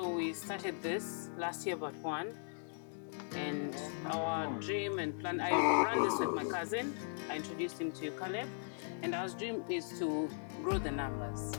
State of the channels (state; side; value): silent; right; digital silence